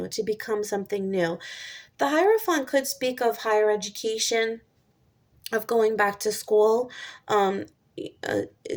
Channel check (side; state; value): both; identical; correlation 1.00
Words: to become something new. The Hierophant could speak of higher education, of going back to school. Um, uh,